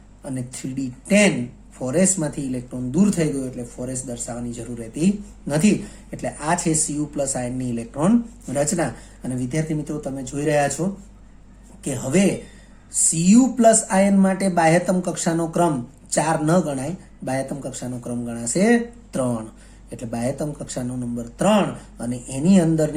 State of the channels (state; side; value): identical; both; correlation 1.00